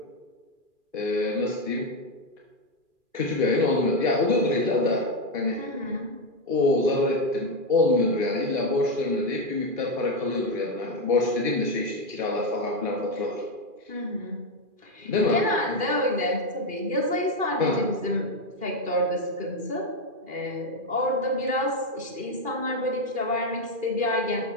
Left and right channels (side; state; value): left; late; 2.4 ms